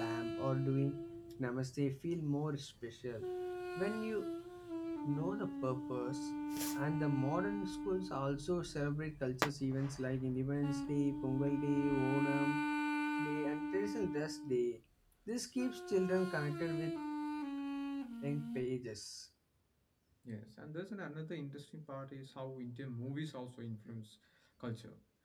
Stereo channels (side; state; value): both; identical; correlation 1.00